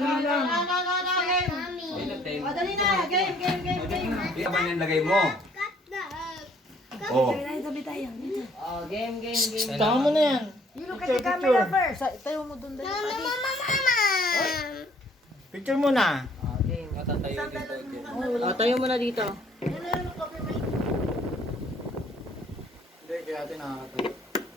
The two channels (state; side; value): normal; both; correlation 0.61